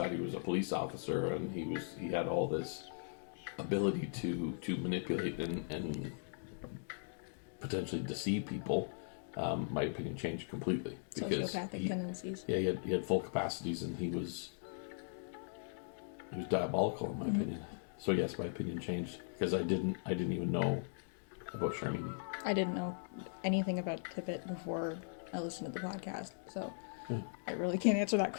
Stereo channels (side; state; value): right; silent; digital silence